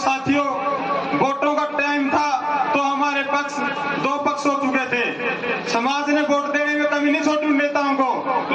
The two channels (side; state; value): both; identical; correlation 1.00